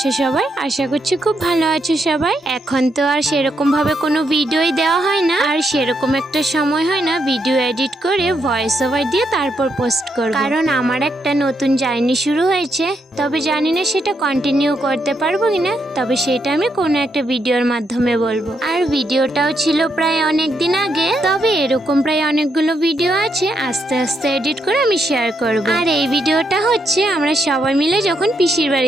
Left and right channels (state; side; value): normal; both; correlation 0.79